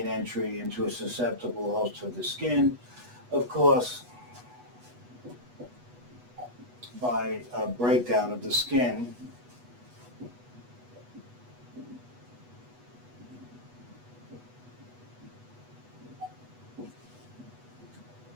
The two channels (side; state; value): left; late; 8.2 ms